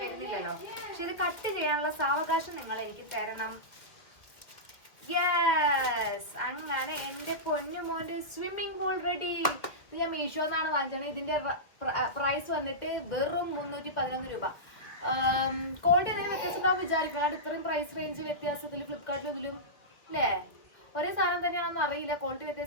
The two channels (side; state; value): right; late; 1.9 ms